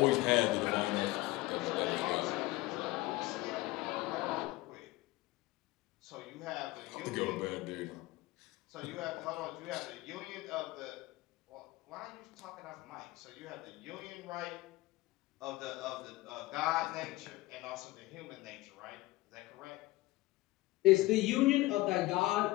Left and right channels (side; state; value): right; quieter; 19.5 dB